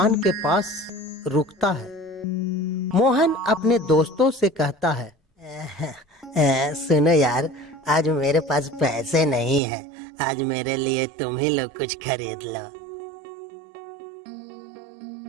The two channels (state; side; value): drops out; left; at 9.6 s